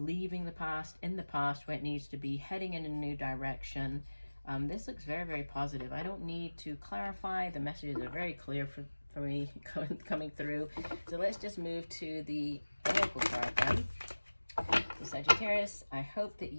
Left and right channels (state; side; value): inverted; both; correlation -1.00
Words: the past in the past where it needs to be, heading in a new direction. This looks very, very positive. I don't need to clarify. The messages are very clear for me coming through. So let's just move to the oracle card then. So Sagittarius, I hope that